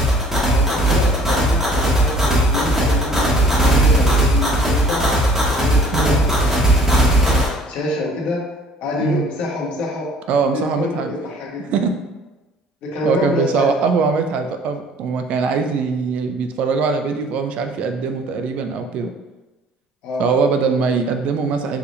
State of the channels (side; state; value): both; normal; correlation 0.53